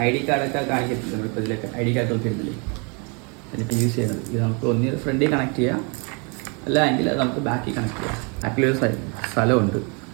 ID കാർഡൊക്കെ കാണിക്കത്തില്ല, നമ്മളിപ്പോൾ ഇതിലൊക്കെ ID കാർഡ് ഒക്കെ ഇരുന്നില്ലേ, അതിനിപ്പോൾ യൂസ് ചെയ്യുന്നത് ഇത് നമുക്ക് ഒന്നിൽ ഫ്രണ്ടിൽ കണക്ട് ചെയ്യാം, അല്ല എങ്കിൽ അത് നമുക്ക് ബാക്കിൽ കണക്ട് ചെയ്യാം. ബാക്കിലൊരു സ്ഥലമുണ്ട്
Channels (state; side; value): quieter; left; 33.9 dB